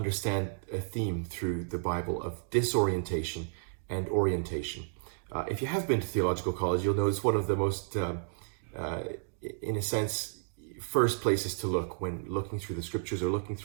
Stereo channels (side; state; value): left; silent; digital silence